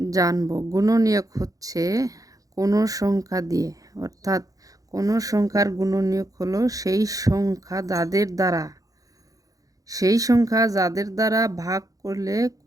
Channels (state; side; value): late; left; 0.17 ms